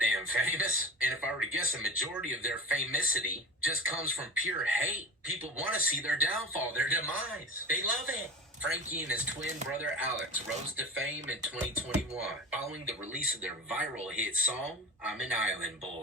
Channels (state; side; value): normal; both; correlation 0.33